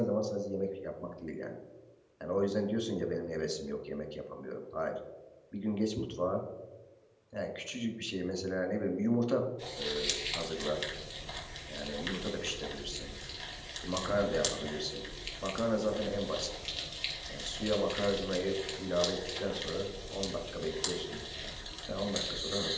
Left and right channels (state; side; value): identical; both; correlation 1.00